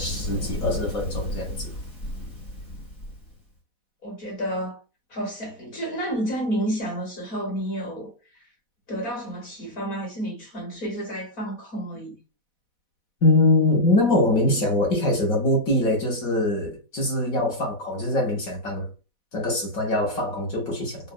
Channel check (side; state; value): right; late; 4.1 ms